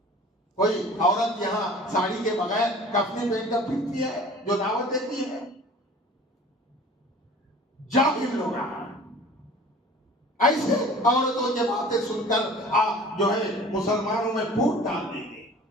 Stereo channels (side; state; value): both; normal; correlation 0.45